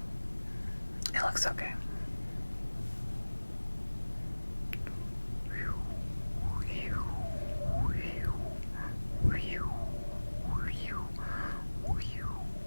it looks okay.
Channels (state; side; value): inverted; both; correlation -1.00